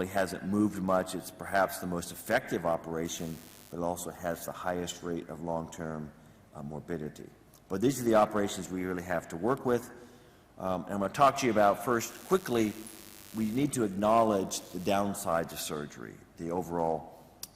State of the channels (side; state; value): both; identical; correlation 1.00